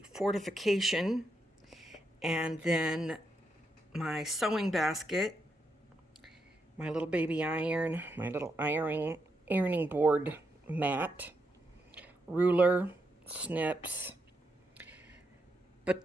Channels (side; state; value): both; normal; correlation 0.81